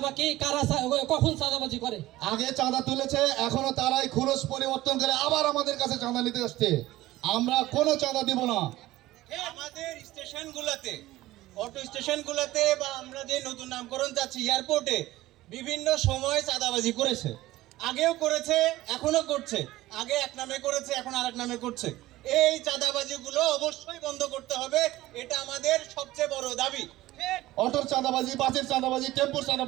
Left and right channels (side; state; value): left; quieter; 16.7 dB